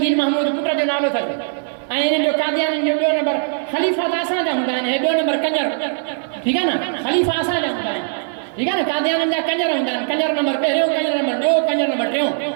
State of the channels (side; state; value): left; silent; digital silence